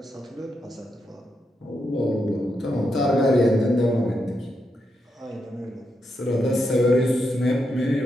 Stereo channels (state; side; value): normal; both; correlation 0.83